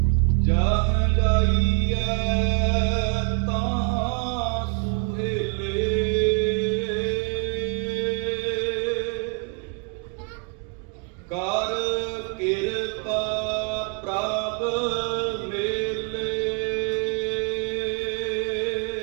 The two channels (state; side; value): quieter; left; 34.5 dB